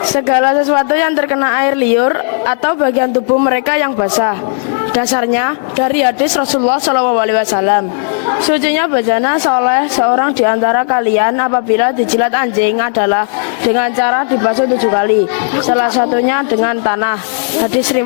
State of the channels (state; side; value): silent; right; 71 dB below the other